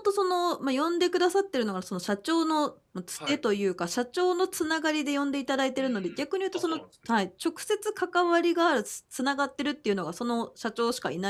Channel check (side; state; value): both; identical; correlation 1.00